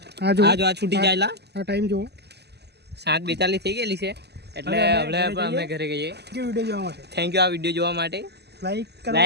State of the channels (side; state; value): left; late; 0.49 ms